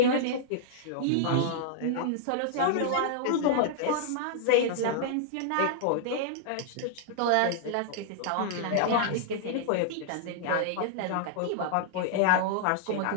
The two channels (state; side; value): different; both; correlation -0.01